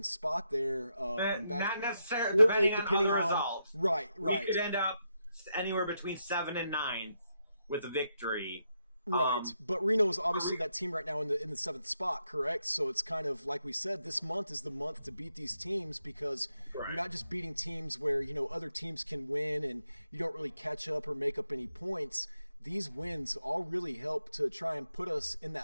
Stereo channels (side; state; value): both; inverted; correlation -0.82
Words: spot there. And back, Not necessarily, or 8, depending on other results. Right. We could end up anywhere between 7 and 9th with a victory. Right, but Reno is obviously that team right now in the 7th spot, correct? So it's kind of like we said, this month is the month to beat these teams, because you're not just beating teams where, you know, other teams can win and you don't really catch up or make up any points. These wins all really help to try and put us in